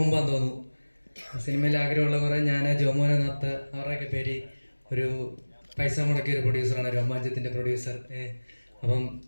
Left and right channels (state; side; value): inverted; both; correlation -1.00